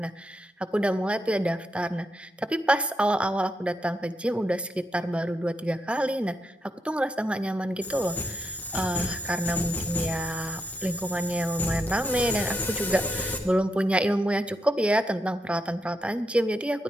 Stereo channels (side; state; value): both; normal; correlation 0.82